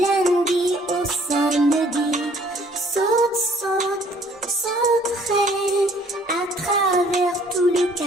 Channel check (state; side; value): normal; both; correlation 0.59